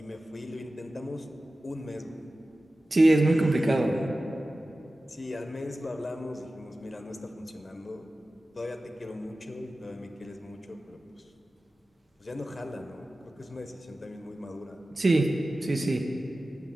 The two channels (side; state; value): both; normal; correlation 0.95